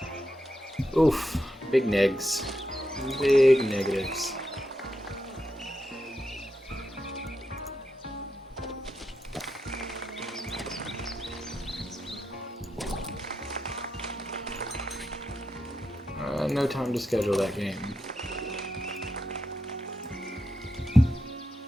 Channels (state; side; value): normal; both; correlation 0.86